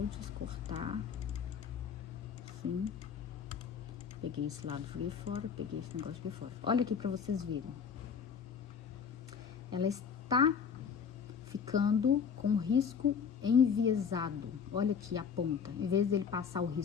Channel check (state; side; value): quieter; right; 6.7 dB